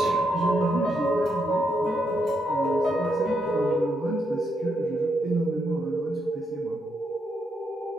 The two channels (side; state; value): both; normal; correlation 0.79